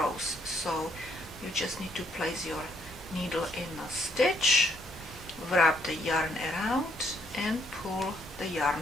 So you just need to place your needle in a stitch, wrap the yarn around, and pull the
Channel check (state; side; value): normal; both; correlation 0.70